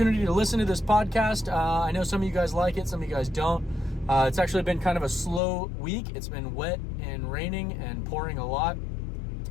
to listen to this podcast. I know some of you guys like it, some of you guys don't. It's actually been kind of a slow week. It's been wet and raining and pouring a lot,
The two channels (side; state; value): right; drops out; at 5.4 s